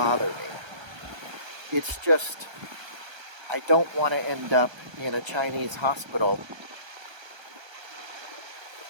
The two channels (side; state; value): left; late; 1.3 ms